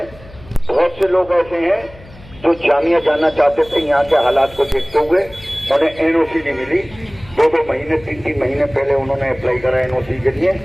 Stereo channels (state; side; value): noise; left; hum, 21 dB below the sound